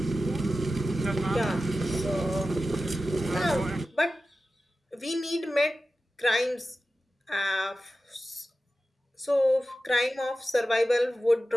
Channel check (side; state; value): both; normal; correlation 0.94